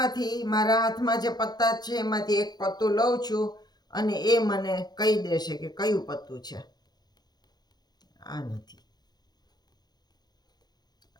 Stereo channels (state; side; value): late; right; 0.20 ms